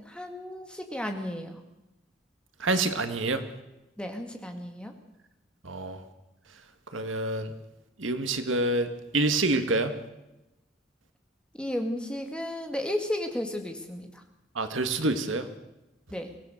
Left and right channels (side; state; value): both; normal; correlation 0.32